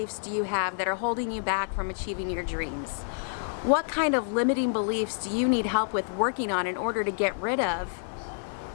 do you have that are holding you back from achieving your dreams? What kind of limiting beliefs do you need help with working on in order to get rid of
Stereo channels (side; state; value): right; silent; digital silence